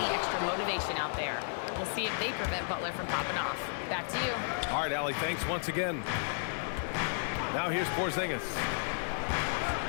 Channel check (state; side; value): silent; right; digital silence